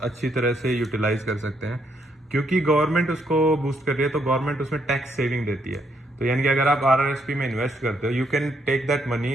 अच्छी तरह से यूटिलाइज कर सकते हैं, क्योंकि गवर्नमेंट उसको बूस्ट कर रही है, तो गवर्नमेंट उसमें टैक्स सेविंग देती है। तो यानी कि अगर आप RRSP में इन्वेस्ट करते हो, you can take that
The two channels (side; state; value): both; normal; correlation 0.74